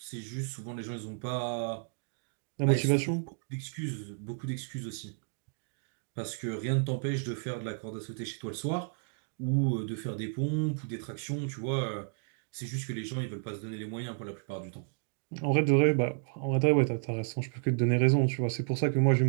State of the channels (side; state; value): left; silent; 56 dB below the other